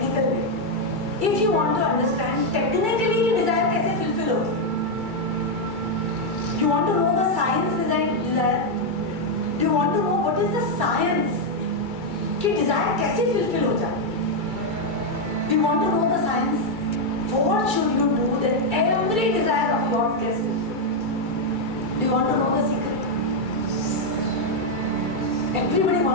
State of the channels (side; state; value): left; late; 2.3 ms